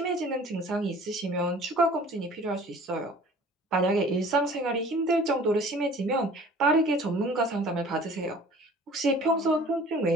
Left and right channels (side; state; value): both; normal; correlation 0.48